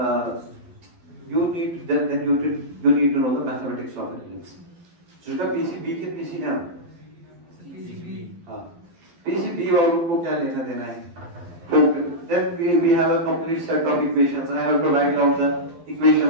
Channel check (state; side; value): late; left; 12 ms